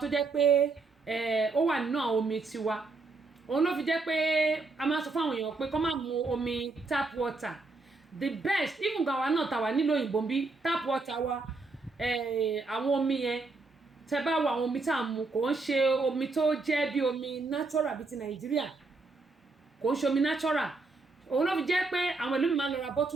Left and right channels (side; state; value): left; quieter; 3.7 dB